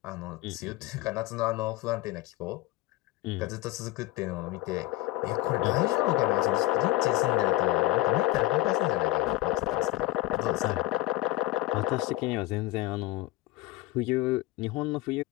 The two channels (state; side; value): quieter; right; 17.9 dB